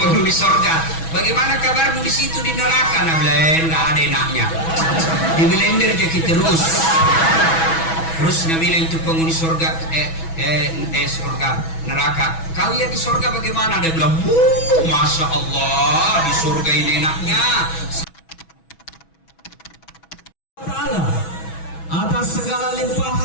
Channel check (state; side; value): late; right; 6.1 ms